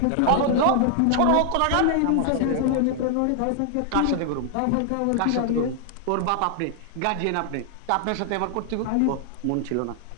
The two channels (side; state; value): both; different; correlation 0.00